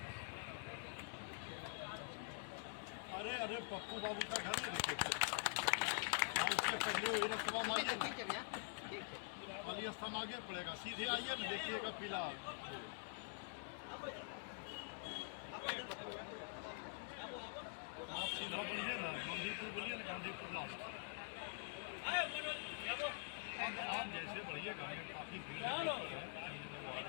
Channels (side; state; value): right; silent; digital silence